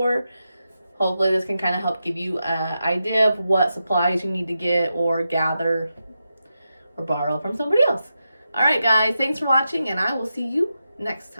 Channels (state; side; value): inverted; both; correlation -0.88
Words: Hopefully this can kind of help give you an idea of what supplies you need to get or gather or borrow from somebody else. All right, guys, thanks for watching, and I will see you next